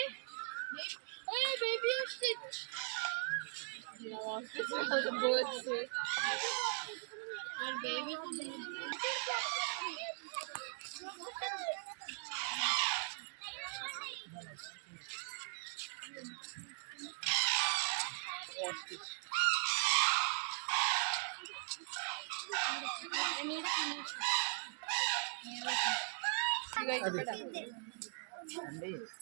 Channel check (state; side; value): silent; left; 51 dB below the other